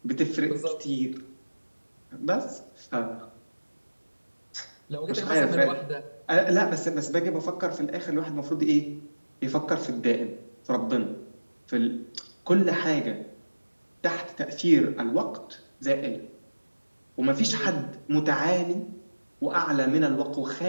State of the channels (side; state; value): both; inverted; correlation -1.00